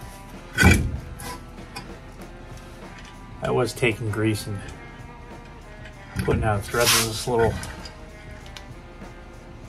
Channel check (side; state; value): both; identical; correlation 1.00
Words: I was taking grease and putting out threads of this little,